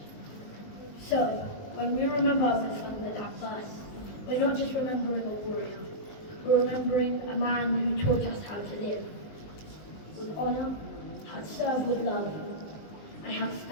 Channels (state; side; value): late; right; 19 ms